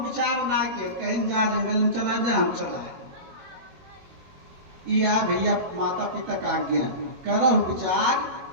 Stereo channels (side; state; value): left; late; 21 ms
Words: ना के कहीं जा जंगल में चला जाए, हम चलाए। या भैया माता पिता का आज्ञा करो विचार,